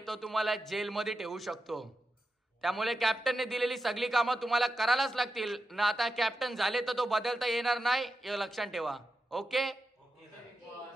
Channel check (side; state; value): both; normal; correlation 0.89